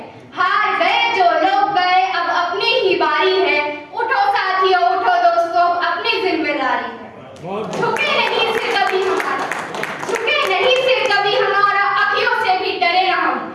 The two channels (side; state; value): both; identical; correlation 1.00